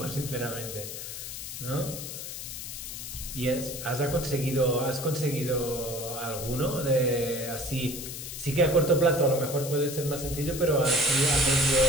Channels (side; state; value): left; noise; hiss, 8 dB below the sound